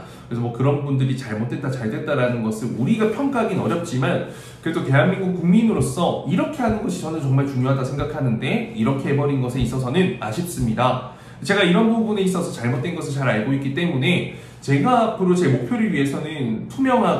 그래서 뭐 그런 분들이 잘못됐다 잘됐다라는 것을 우리가 평가하기는 어렵지만, 그래도 대한민국 국민으로서 이렇게 하는 것이 저는 정말 중요하다 생각하는데 이렇게 해버린 것에 있어서는 아쉽습니다. 제가 이런 부분에 있어서 잘못된 것을 잘 알고 있기 때문에 제가 앞으로 제 목표를 위해서는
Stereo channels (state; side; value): identical; both; correlation 1.00